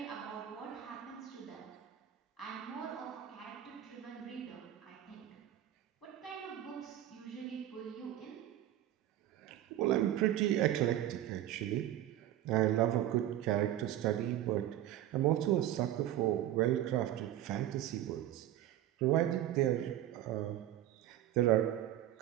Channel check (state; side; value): quieter; left; 12.6 dB